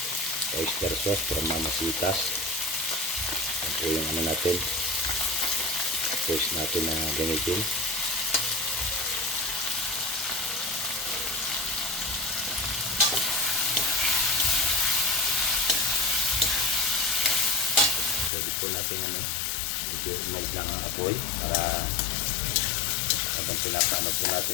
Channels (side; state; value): right; drops out; at 18.3 s